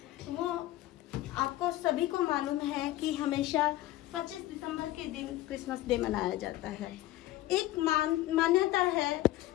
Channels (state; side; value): quieter; right; 15.6 dB